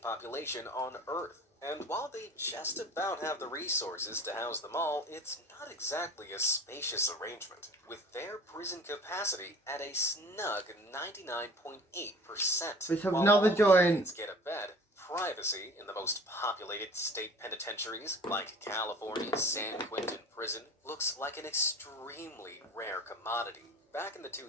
population on Earth. And while they just about have the resources to house them all, it's not exactly a spacious arrangement, with their prison capacity at a snug 99.8%. Let's have While another all joint. inmates get a bed, privacy in the most populated state penitentiaries, like California's San Quentin prison, looks like an extremely rare commodity. Back in the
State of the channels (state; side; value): normal; both; correlation 0.45